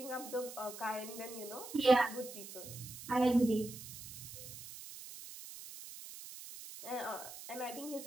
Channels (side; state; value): right; noise; hiss, 12 dB below the sound